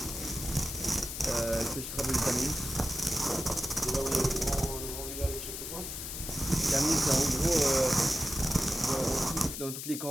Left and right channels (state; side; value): noise; left; hiss, 7 dB below the sound